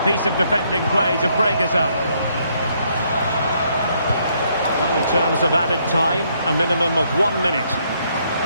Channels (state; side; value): inverted; both; correlation -0.71